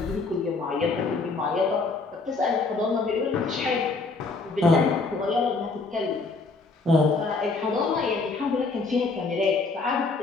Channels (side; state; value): right; quieter; 3.9 dB